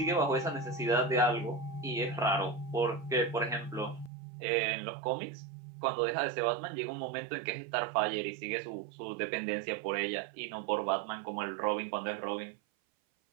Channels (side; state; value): left; drops out; at 4.1 s